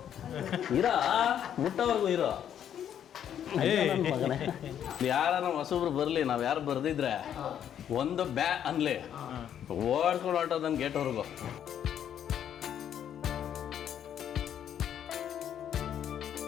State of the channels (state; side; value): quieter; right; 9.6 dB